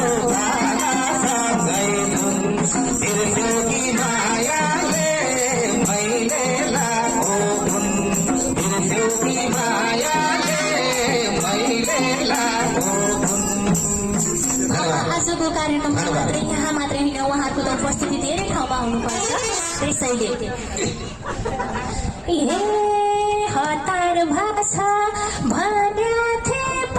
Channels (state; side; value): identical; both; correlation 1.00